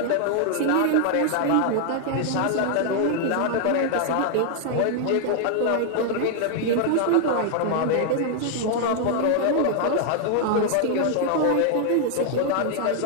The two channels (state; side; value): different; both; correlation 0.00